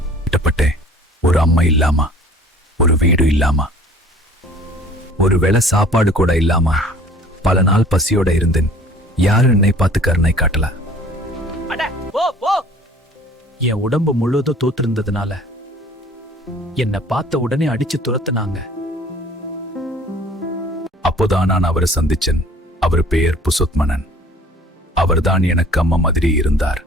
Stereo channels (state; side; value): normal; both; correlation 0.50